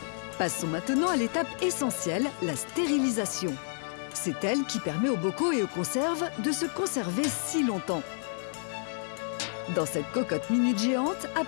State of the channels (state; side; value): silent; right; 58 dB below the other